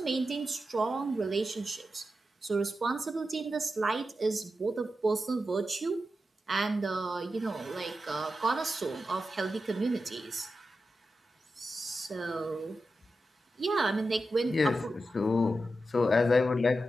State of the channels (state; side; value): normal; both; correlation 0.90